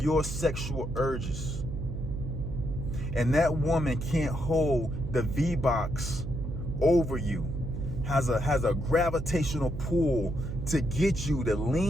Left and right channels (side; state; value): right; noise; hum, 6 dB below the sound